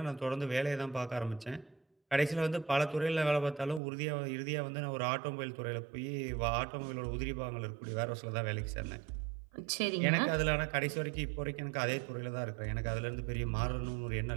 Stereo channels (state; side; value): drops out; left; at 3.8 s